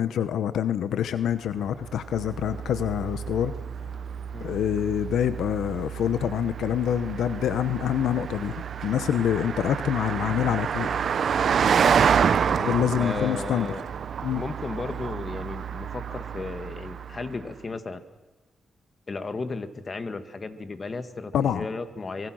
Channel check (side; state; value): both; normal; correlation 0.64